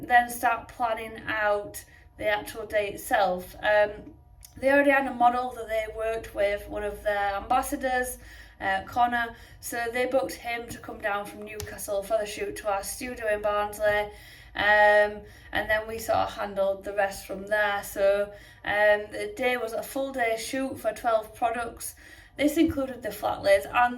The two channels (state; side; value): identical; both; correlation 1.00